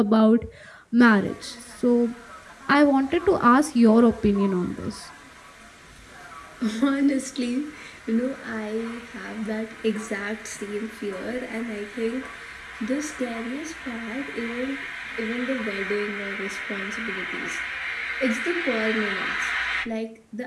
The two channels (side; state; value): both; identical; correlation 1.00